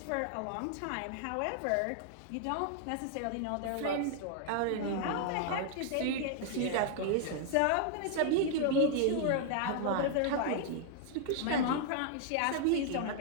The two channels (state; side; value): different; both; correlation 0.00